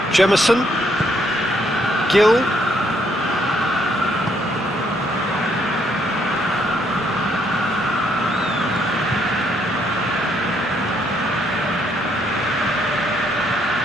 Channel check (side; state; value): both; normal; correlation 0.71